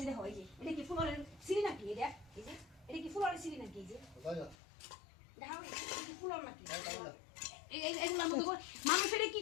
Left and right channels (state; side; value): drops out; right; at 4.5 s